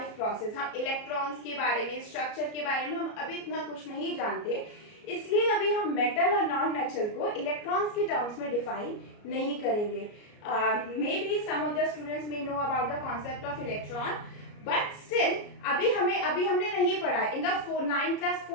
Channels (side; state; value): right; late; 33 ms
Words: process. हम इलेक्ट्रॉन्स के बारे में, स्ट्रक्चर के बारे में हम अभी इतना कुछ नहीं जानते, इसलिए अभी हम मेटल और नॉन मेटल को इलेक्ट्रॉन्स के टर्म्स में डिफाइन नहीं करेंगे। May be some of the students may know about the concept of electron, but still अभी हमने नहीं पढ़ा। In the 9th class